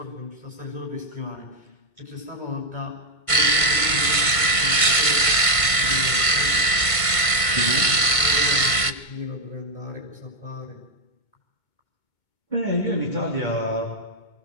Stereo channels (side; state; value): right; late; 1.5 ms